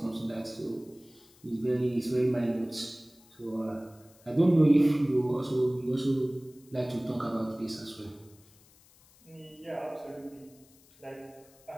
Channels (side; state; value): left; noise; hiss, 27 dB below the sound